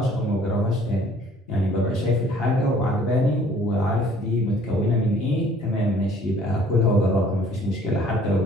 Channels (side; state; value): both; normal; correlation 0.56